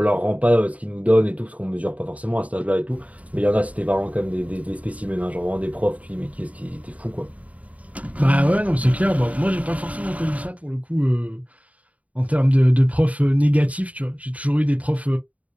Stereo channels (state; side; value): late; left; 0.069 ms